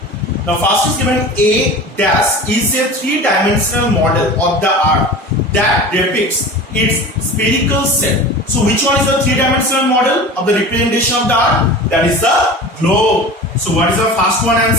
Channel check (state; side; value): normal; both; correlation 0.35